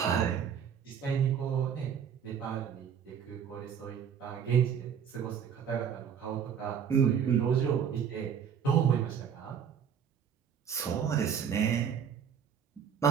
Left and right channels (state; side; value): quieter; left; 7.9 dB